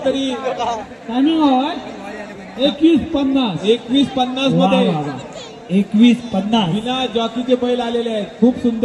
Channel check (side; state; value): both; identical; correlation 1.00